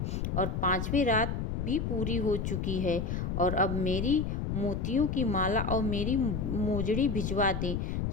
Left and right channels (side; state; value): left; noise; rumble, 2 dB below the sound